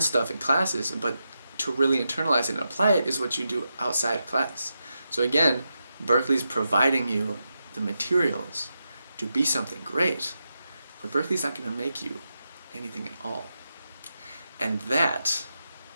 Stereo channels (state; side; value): inverted; both; correlation -0.87